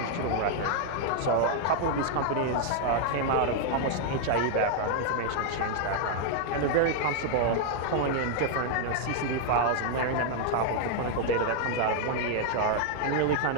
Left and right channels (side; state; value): both; different; correlation 0.00